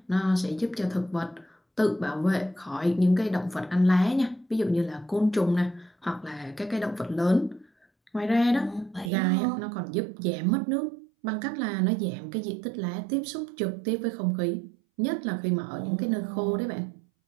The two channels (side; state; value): left; drops out; at 9.1 s